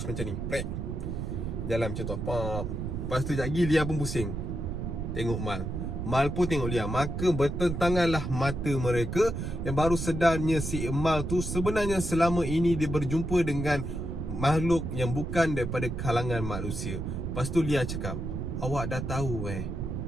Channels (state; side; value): noise; right; rumble, 4 dB below the sound